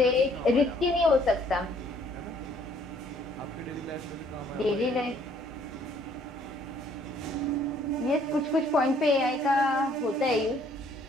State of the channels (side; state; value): both; normal; correlation 0.62